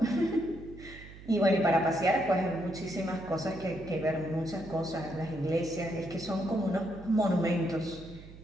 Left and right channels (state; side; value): noise; right; hum, 17 dB below the sound